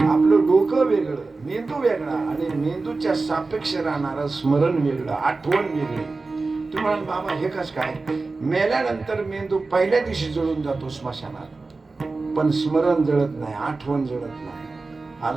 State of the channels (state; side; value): quieter; left; 3.7 dB